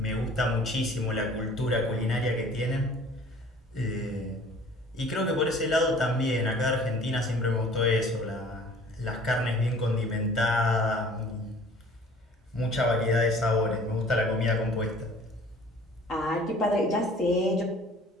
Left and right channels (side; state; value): both; normal; correlation 0.50